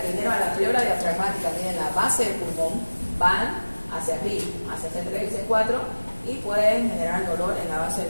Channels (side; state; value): both; inverted; correlation -1.00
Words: que vinieron a la pleura diafragmática tienen la base del pulmón, van hacia arriba, hacia C3 y C4, y pueden generar dolor en la base